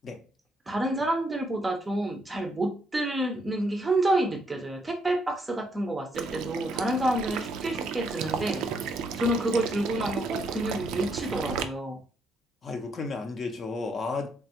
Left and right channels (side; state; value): both; normal; correlation 0.74